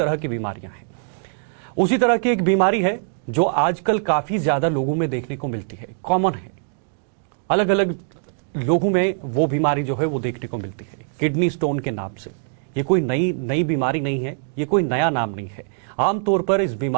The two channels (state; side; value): silent; left; digital silence